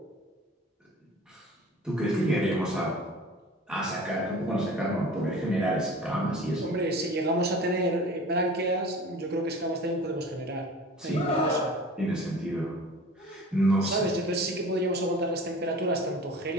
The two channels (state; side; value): normal; both; correlation 0.40